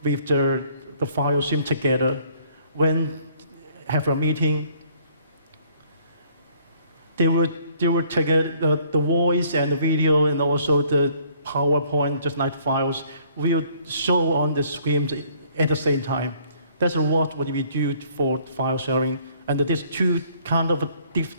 with the file stream together. When have a meeting, they will take the voice and the video and also the PowerPoint, just like files, will show on the screen at the same time. That's what we do for file sharing. And these two kind of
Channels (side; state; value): both; inverted; correlation -0.61